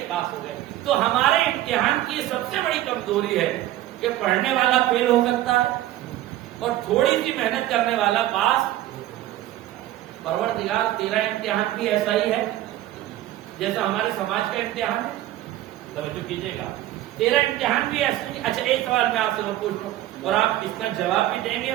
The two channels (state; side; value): quieter; left; 14.3 dB